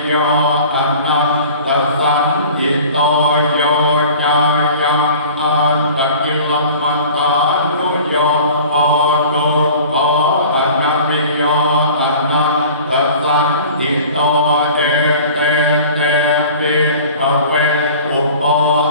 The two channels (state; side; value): inverted; both; correlation -0.43